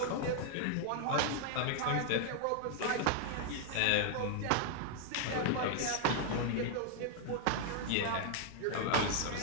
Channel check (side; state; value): both; different; correlation 0.00